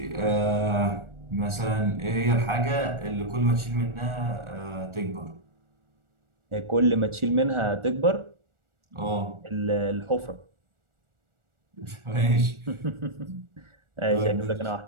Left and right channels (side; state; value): left; late; 1.4 ms